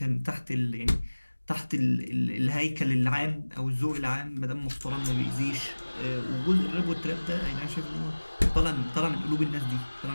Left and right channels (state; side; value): inverted; both; correlation -1.00